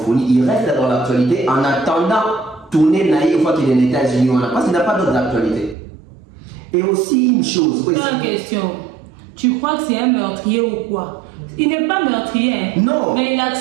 il reste dans l'actualité en attendant tourner naïf une fois qu'il est aux États-Unis. Parce qu'il n'a pas d'autre actualité. Et aussi une chose. Une question. Tu crois que c'est un meurtrier ou quoi? Il n'est pas meurtrier. Hein? Non. Mais il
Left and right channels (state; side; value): drops out; left; at 5.8 s